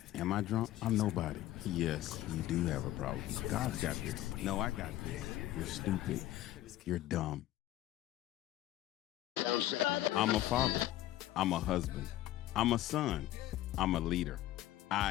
am I drunk? I'm nobody. Yes, you do have a problem. God's got this. No, I got this. You're stupid. You're dumb. I'm a father. I'm a husband. I'm a son. I'm a leader.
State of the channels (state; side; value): quieter; right; 14.4 dB